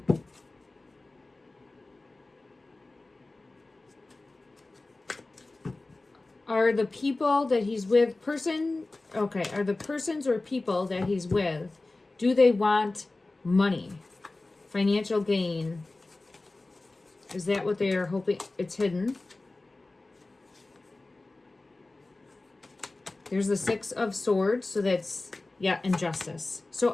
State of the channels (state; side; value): quieter; right; 3.1 dB